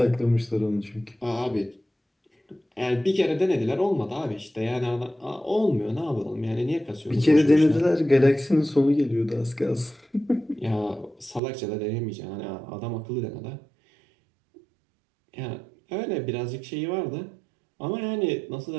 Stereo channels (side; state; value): left; drops out; at 11.4 s